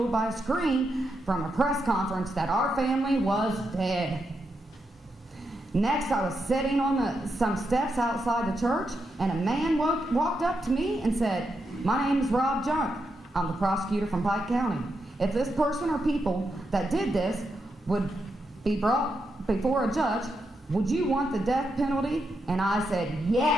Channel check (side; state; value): both; normal; correlation 0.84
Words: by a screen from a press conference that our family was dead. Next, I was sitting on some steps outside the church, and a man walked up to me and said, my name is Rob Junk. I'm the prosecutor from Pike County. If this person or people that did this would be brought before a judge, would you want the death penalty? And I said,